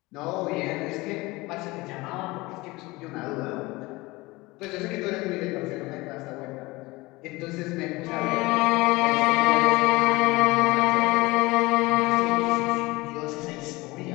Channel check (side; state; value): right; quieter; 21.8 dB